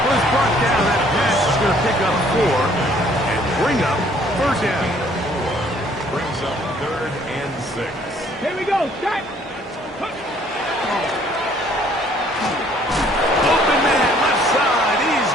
Was brought down. That pass is going to pick up 4 and bring up third down. Brings up 3rd and 6. Here we go, set. Open man, left side. He's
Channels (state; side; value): normal; both; correlation 0.60